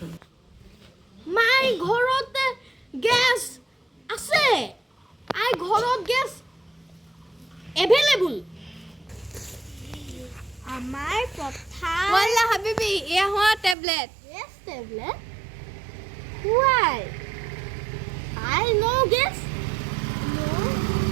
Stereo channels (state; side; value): drops out; left; at 13.8 s